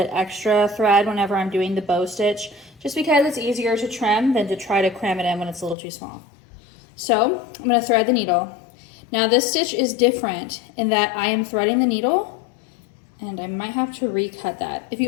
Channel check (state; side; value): drops out; right; at 5.8 s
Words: extra thread whenever I'm doing the bow stitch, just because it's easier to trim than to try to cram it in when it's a little too small. So I'm going to thread the needle. Now this stitch is different in that I am threading the needle, and I might have to recut that. If